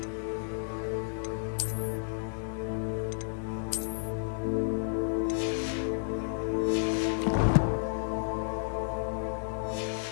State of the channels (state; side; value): silent; right; digital silence